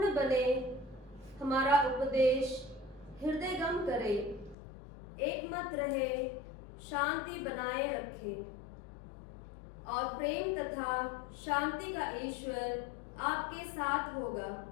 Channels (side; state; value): right; drops out; at 4.5 s